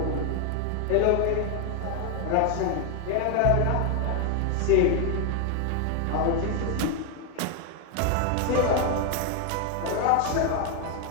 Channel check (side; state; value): both; different; correlation 0.01